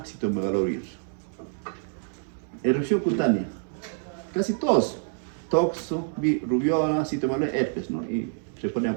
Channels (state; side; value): silent; left; 60 dB below the other